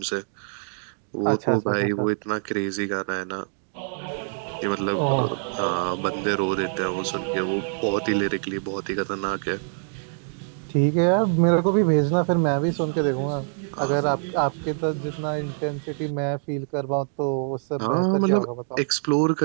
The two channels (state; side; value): silent; left; digital silence